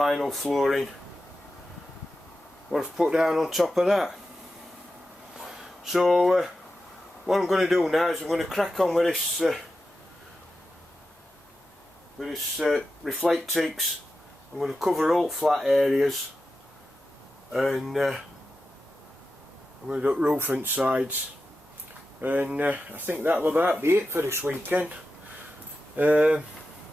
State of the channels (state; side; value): normal; both; correlation 0.91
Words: flooring what I've put down on top of that. So what I'm going to do now is I'm going to crack on with this Reflectix. I'm going to cover all flat areas, and I'm going to do roof and sides, and I think that'll about be it for this weekend. It's